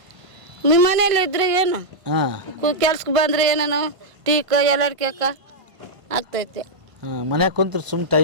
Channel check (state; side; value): late; left; 1.5 ms